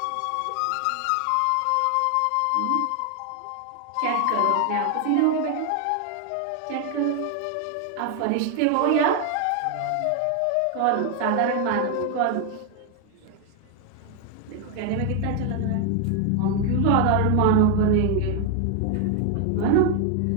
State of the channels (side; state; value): both; different; correlation 0.01